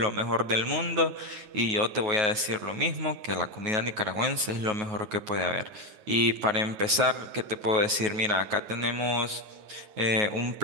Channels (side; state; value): left; late; 9.4 ms